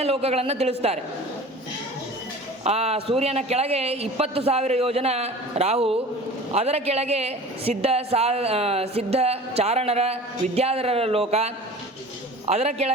ಲೋಕಗಳನ್ನು ತಿಳಿಸ್ತಾರೆ. ಆ ಸೂರ್ಯನ ಕೆಳಗೆ 20,000 ಯೋಜನ ರಾಹು, ಅದರ ಕೆಳಗೆ ಸಿದ್ಧ ಚಾರಣರ ವಿದ್ಯಾಧರರ ಲೋಕ, ಅದರ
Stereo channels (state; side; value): normal; both; correlation 0.40